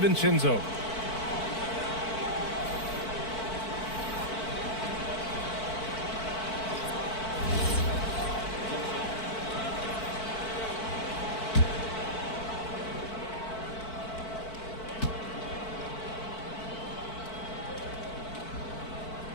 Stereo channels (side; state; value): right; late; 4.5 ms